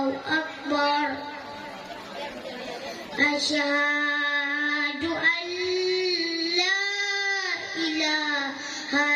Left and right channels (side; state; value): both; identical; correlation 1.00